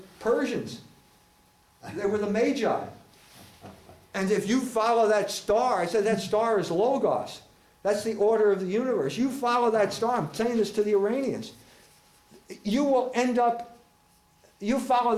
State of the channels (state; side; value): identical; both; correlation 1.00